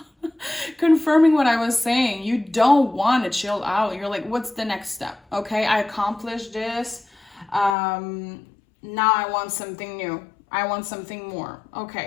confirming what I was saying, you don't want to chill out. You're like, what's the next step? Okay, I accomplished this. Now I want something new. I want something more.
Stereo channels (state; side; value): drops out; right; at 7.8 s